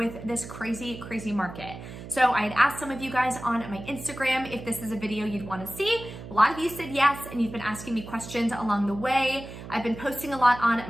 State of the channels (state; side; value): noise; right; hum, 12 dB below the sound